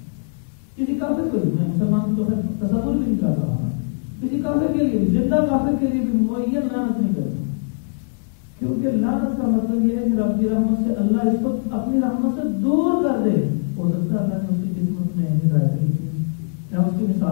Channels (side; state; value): right; silent; 65 dB below the other